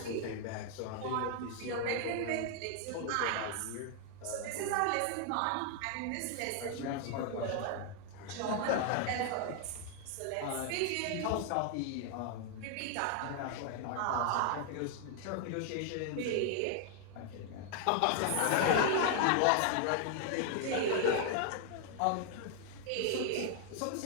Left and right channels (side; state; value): both; different; correlation 0.00